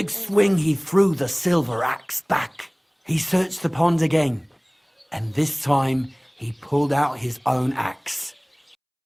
swing he threw the silver axe back. He searched the pond again, and this time he pulled out his own axe.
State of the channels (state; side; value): identical; both; correlation 1.00